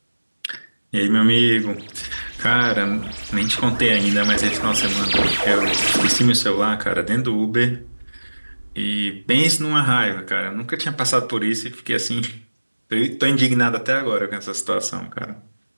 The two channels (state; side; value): inverted; both; correlation -1.00